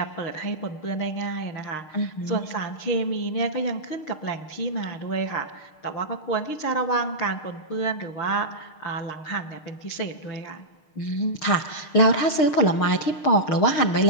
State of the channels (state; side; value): late; right; 6.6 ms